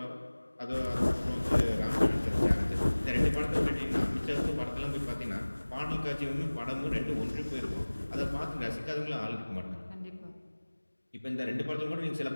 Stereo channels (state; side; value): inverted; both; correlation -1.00